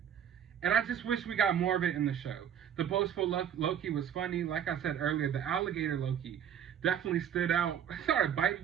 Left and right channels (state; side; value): quieter; left; 9.1 dB